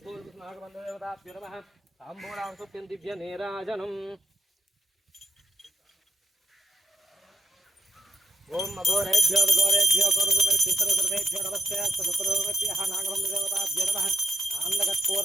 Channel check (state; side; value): normal; both; correlation 0.81